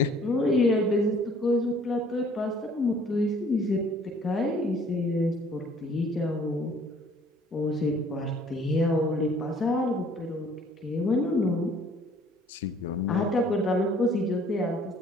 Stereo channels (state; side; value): normal; both; correlation 0.57